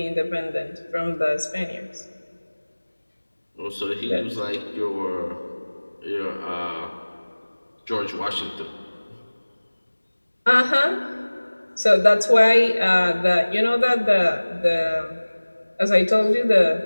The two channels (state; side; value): inverted; both; correlation -1.00